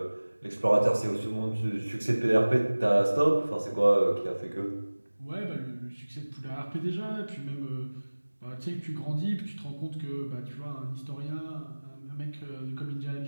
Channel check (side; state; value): both; inverted; correlation -1.00